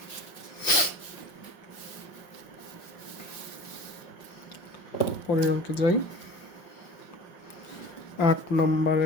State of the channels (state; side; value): late; right; 5.8 ms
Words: পরের অঙ্কে যাই, 8